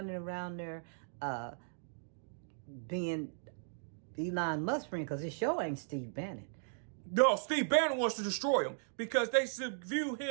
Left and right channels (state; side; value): silent; left; digital silence